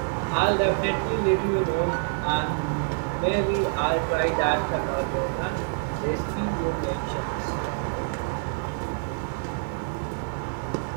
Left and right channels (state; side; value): silent; left; digital silence